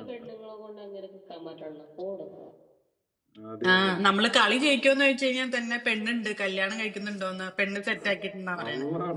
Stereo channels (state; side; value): identical; both; correlation 1.00